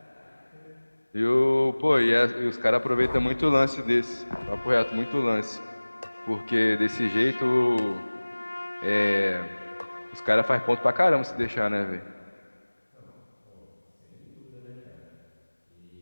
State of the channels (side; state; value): both; inverted; correlation -1.00